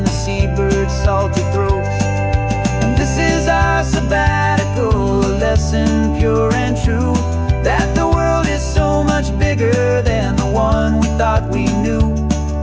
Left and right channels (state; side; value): identical; both; correlation 1.00